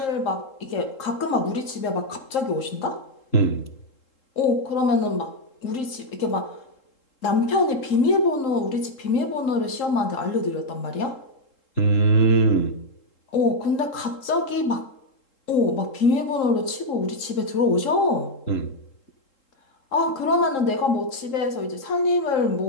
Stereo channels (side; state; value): right; late; 3.7 ms